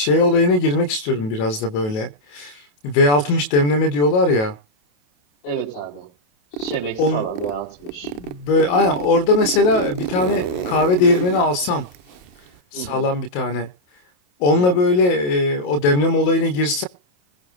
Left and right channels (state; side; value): late; right; 28 ms